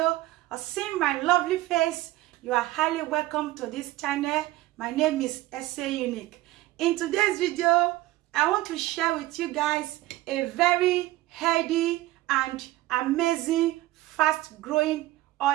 or seeing my lovely face, you are highly welcome to this channel. My name is Ese Unique. In today's video, I want to share with you guys a very healthy and amazing fast growing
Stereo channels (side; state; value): left; quieter; 17.3 dB